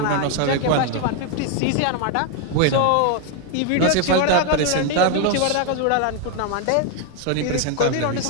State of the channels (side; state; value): both; different; correlation 0.01